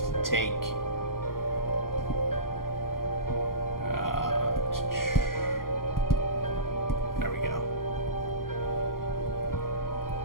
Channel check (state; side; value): late; right; 0.91 ms